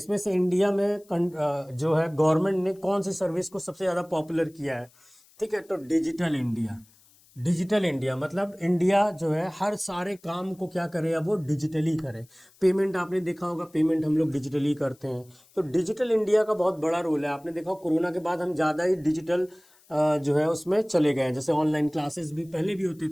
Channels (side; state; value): left; noise; hiss, 30 dB below the sound